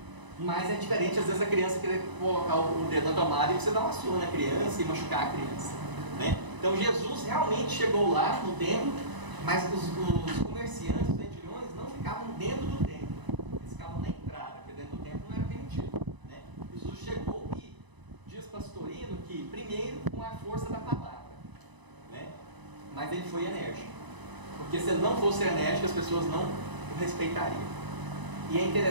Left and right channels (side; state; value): left; late; 1.0 ms